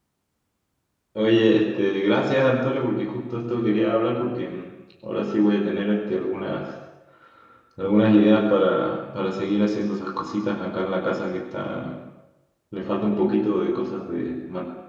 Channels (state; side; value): identical; both; correlation 1.00